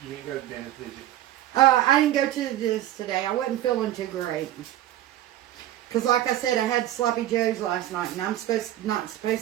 You didn't go to the dentist, did you? I didn't go to the dentist today. I wasn't feeling too great. Because like I said, I had sloppy joes last night, and I'm not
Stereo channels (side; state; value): left; quieter; 13.5 dB